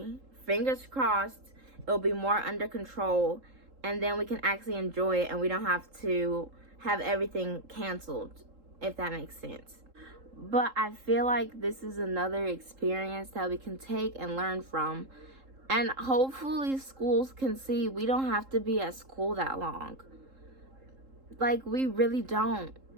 fingers crossed, it'll be more under control, and then we can actually enjoy it and we don't have to have everything canceled, if that makes sense. But I feel like this is another experience that we can take and learn from. And hopefully schools can see we don't have to be at school that long. Like, we really don't.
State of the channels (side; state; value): left; late; 3.7 ms